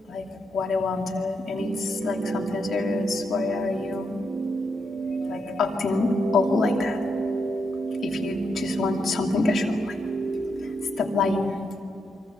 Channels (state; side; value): normal; both; correlation 0.81